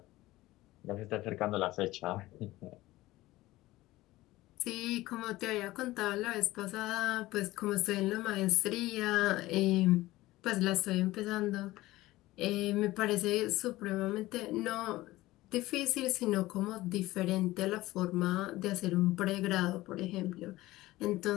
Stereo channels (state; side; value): quieter; right; 17.8 dB